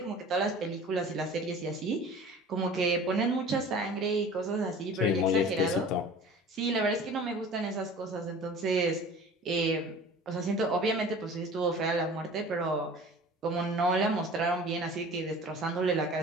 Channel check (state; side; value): normal; both; correlation 0.43